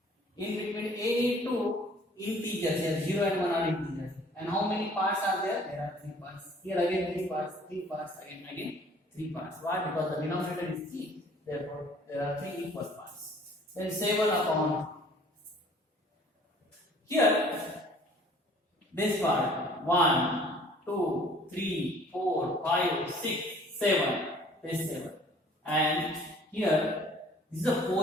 in between any two integers here. 0 and 1 are integers. And how many parts are there? There are 3 parts. Here again 3 parts, 3 parts, again 3 parts. Why? Because the denominator is 3. Therefore, there are 3 equal parts. Then 7 upon. Here, this part 1, 2, 3, 4, 5, 6, 7. This 7. And here, this is the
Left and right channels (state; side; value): normal; both; correlation 0.54